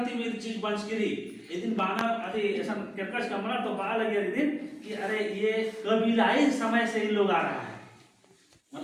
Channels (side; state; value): both; identical; correlation 1.00